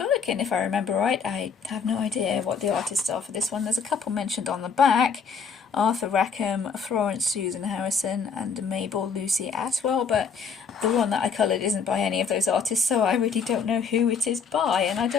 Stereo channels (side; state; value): right; quieter; 5.8 dB